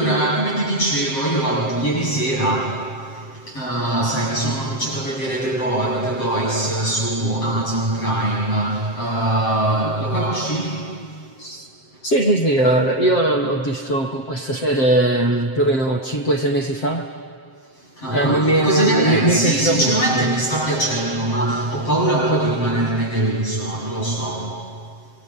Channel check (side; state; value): right; late; 7.6 ms